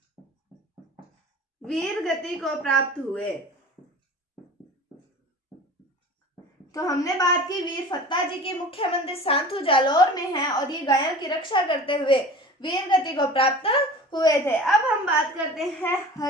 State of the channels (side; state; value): both; normal; correlation 0.39